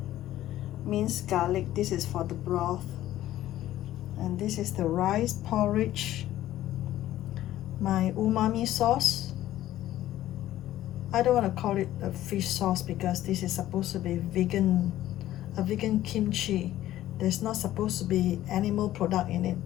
minced garlic. This is for the broth, and this is the rice porridge, my umami sauce. I don't want to call it a fish sauce because this is supposed to be vegan a vegan kimchi. There's not supposed to be animal product in it.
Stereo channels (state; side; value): quieter; right; 13.8 dB